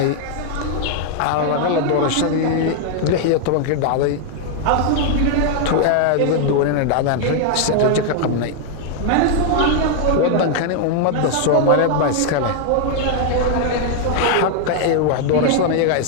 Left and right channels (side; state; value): both; different; correlation 0.00